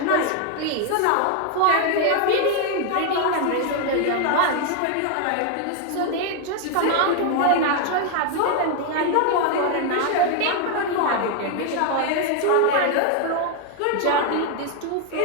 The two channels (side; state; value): both; different; correlation 0.00